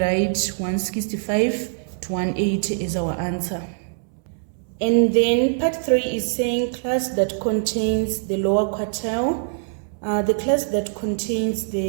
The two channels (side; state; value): left; silent; 63 dB below the other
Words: 165 to 180 is our answer. And then part 3 is saying class that contains the lower quartile. The class that contains